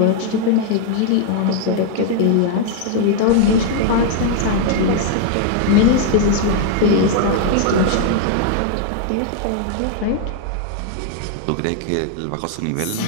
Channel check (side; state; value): both; different; correlation 0.00